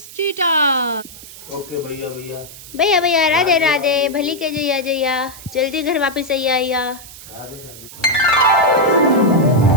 cheater. Okay भैया भैया भैया, राधे राधे, भली के जैया जैया, जल्दी घर वापस आइया। राधे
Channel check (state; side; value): noise; right; hiss, 16 dB below the sound